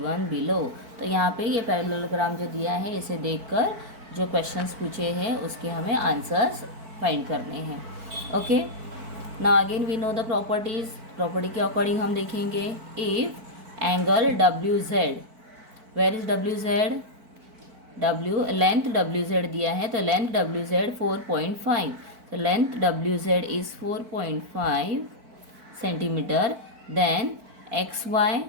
below। तो यहाँ पे ये पैरेललोग्राम जो दिया है इसे देखकर जो क्वेश्चंस पूछे हैं उसके हमें आंसर्स फाइंड करने हैं। Okay, now again we know the properties. Property के अकॉर्डिंग हम देखेंगे, if angle W Z, where is W Z, W length W Z दिया है तो length W Z 4.5, so length WZ is 4.5 centimetre. Then XY,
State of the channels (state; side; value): late; left; 4.5 ms